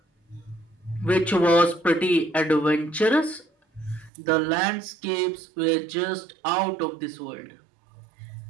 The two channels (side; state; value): left; drops out; at 4.1 s